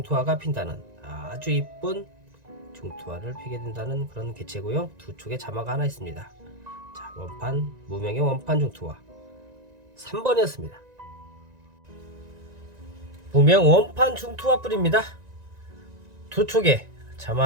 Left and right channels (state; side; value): late; left; 1.9 ms